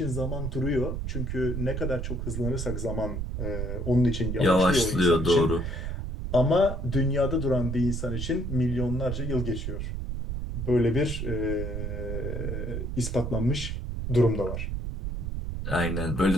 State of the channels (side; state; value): right; noise; rumble, 4 dB below the sound